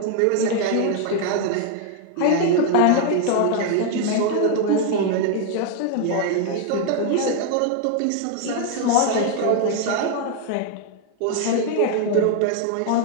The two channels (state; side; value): different; both; correlation 0.00